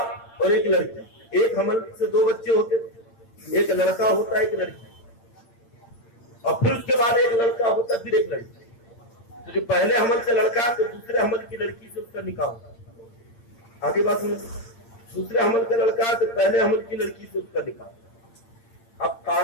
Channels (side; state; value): right; late; 8.8 ms